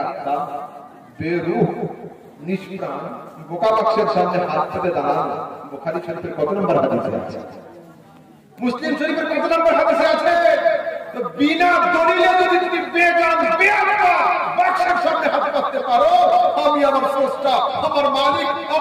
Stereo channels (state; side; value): identical; both; correlation 1.00